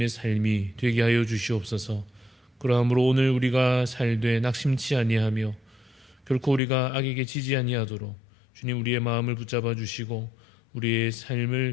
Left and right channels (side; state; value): right; drops out; at 6.6 s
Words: 삶이 되게 하여 주시옵소서. 그러므로 오늘 우리가 살되 낙심치 아니하며 결코 우리가 악에게 지지 아니하도록 주님 우리의 마음을 붙잡아 주시고 우리의